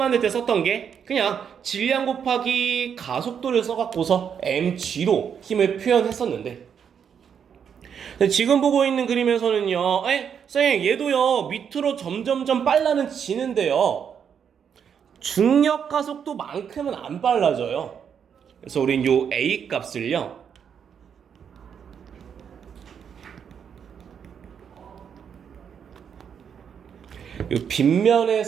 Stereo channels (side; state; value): left; quieter; 7.6 dB